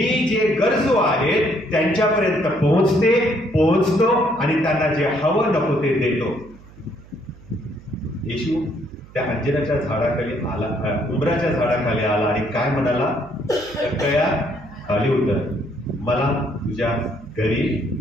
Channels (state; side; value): noise; right; hum, 22 dB below the sound